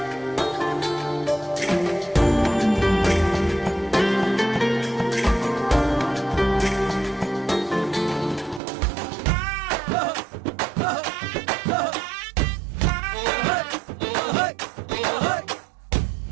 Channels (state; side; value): drops out; left; at 8.6 s